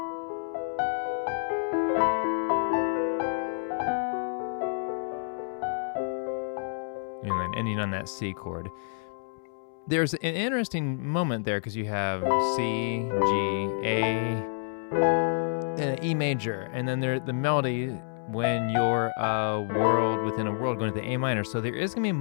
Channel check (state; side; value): silent; right; 59 dB below the other